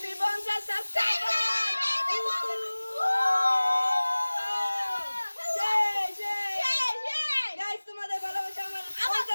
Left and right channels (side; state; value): both; inverted; correlation -1.00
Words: 50 subscriber. Guys তোমাদের ভালোবাসা আমার